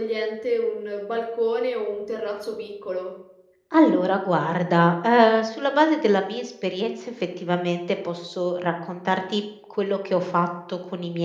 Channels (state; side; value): identical; both; correlation 1.00